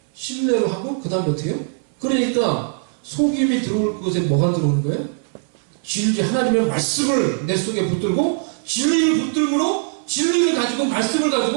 신뢰로 하고 그 다음에 어떻게 해요? 그러니까 속임이 들어올 곳에 뭐가 들어오는 거예요? 진리, 하나님의 말씀을 내 속에 붙들고 진리를 붙들므로 진리를 가지고 말씀을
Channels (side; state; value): left; silent; 65 dB below the other